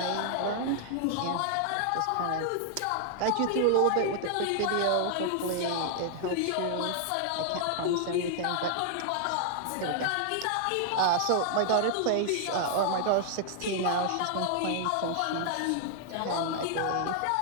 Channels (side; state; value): both; different; correlation -0.01